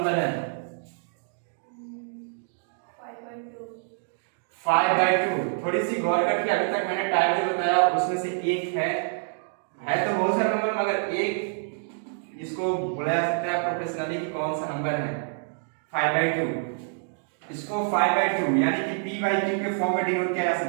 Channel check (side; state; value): left; silent; digital silence